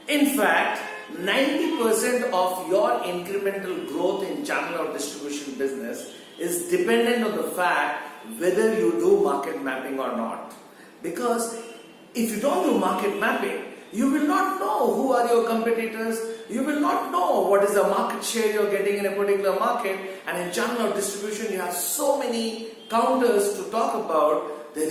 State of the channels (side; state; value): both; identical; correlation 1.00